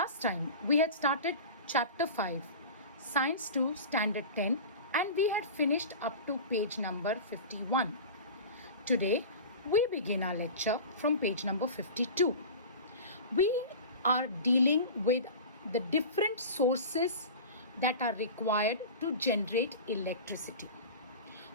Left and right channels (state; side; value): inverted; both; correlation -0.33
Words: time we had started Chapter 5, Science 2, Standard 10, and we had finished up to page number 51. Today we begin our lecture from page number 52. We are dealing with the different sources that are required to generate electricity.